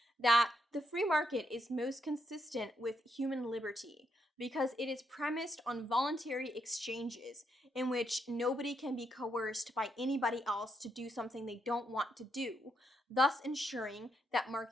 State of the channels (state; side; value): normal; both; correlation 0.78